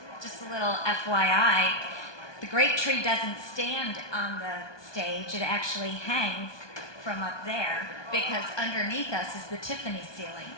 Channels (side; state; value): right; late; 1.2 ms